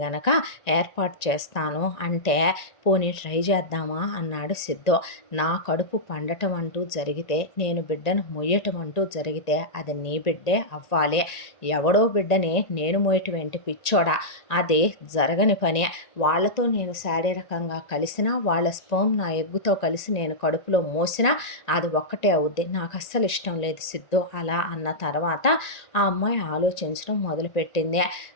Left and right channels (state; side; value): late; right; 1.9 ms